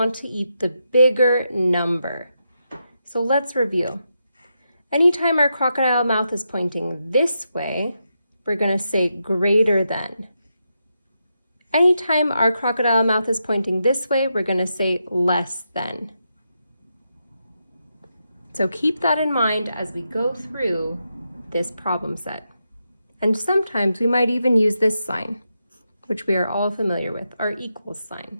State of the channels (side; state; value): both; inverted; correlation -0.85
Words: to eat the bigger number. So let's review. Anytime our crocodile mouth is pointing this way, we're going to say greater than. Anytime our crocodile mouth is pointing this way, we're going to say less than. So keep that in mind as we go through this problem set. And sometimes we might even use this sign, which we are all familiar with, our equals sign.